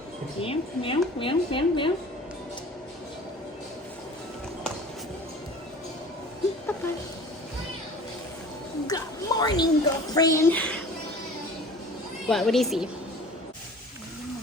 Meow, meow, meow, meow, meow. Papa. Good morning, girlfriend. What do you see?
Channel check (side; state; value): both; normal; correlation 0.43